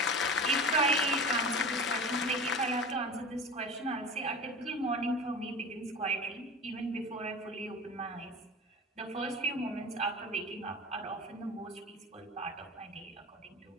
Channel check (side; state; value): both; normal; correlation 0.34